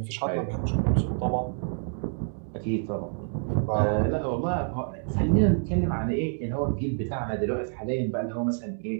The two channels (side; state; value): left; silent; digital silence